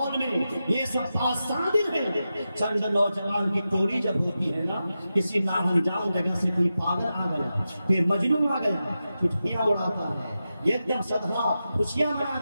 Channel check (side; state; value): both; inverted; correlation -0.91